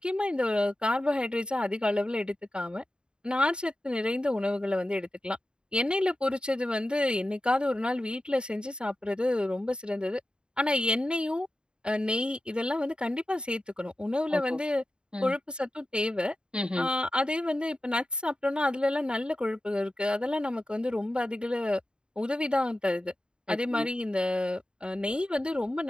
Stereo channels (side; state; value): left; late; 0.050 ms